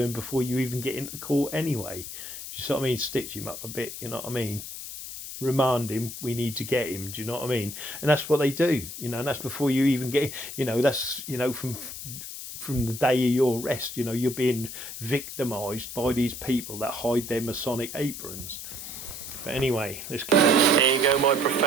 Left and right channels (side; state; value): left; noise; hiss, 9 dB below the sound